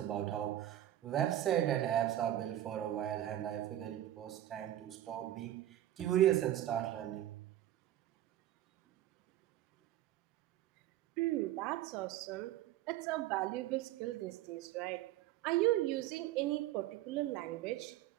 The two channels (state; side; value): quieter; left; 13.0 dB